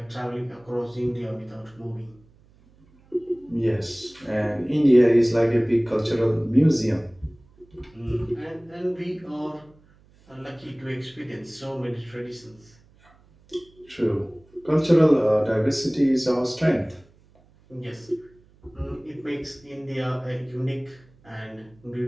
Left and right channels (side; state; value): right; noise; hum, 29 dB below the sound